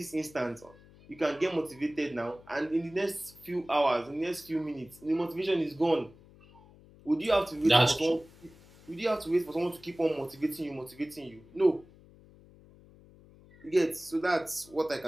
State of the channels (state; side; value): noise; left; hum, 24 dB below the sound